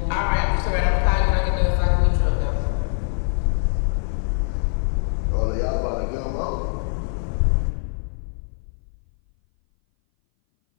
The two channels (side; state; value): right; silent; 59 dB below the other